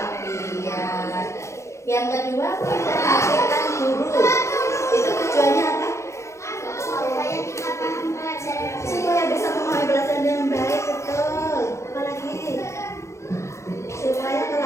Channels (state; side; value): late; right; 0.14 ms